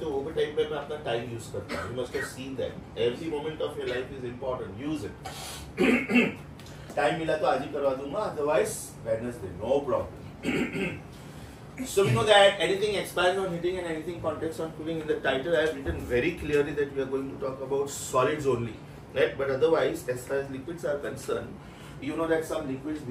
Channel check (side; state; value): both; identical; correlation 1.00